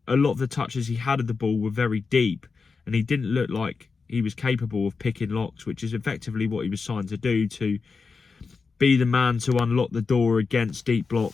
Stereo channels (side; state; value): right; quieter; 4.8 dB